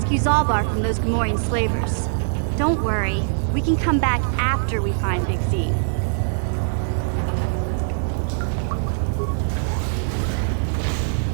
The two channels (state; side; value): silent; left; digital silence